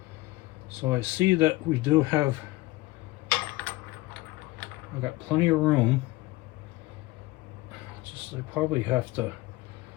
So I see that we do have, I've got plenty of room. Just I probably have to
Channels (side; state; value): right; quieter; 19.6 dB